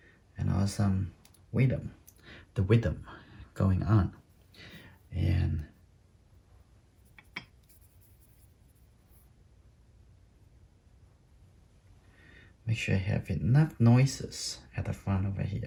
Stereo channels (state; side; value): identical; both; correlation 1.00